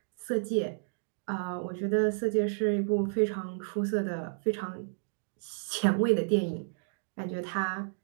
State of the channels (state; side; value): silent; left; digital silence